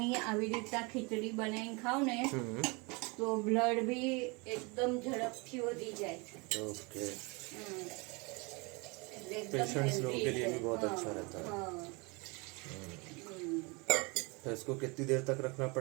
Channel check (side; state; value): left; quieter; 28.6 dB